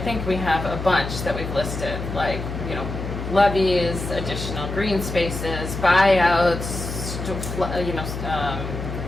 we have a bunch that we've listed, like, you know, levees, additional green spaces, buyouts,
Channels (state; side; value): noise; left; hum, 6 dB below the sound